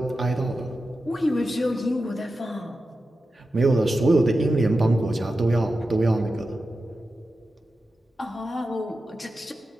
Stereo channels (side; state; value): both; normal; correlation 0.91